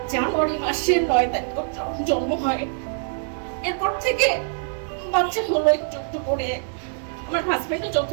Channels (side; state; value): left; silent; digital silence